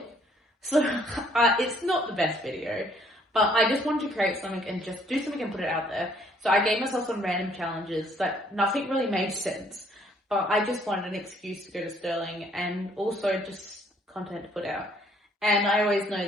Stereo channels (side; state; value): both; normal; correlation 0.64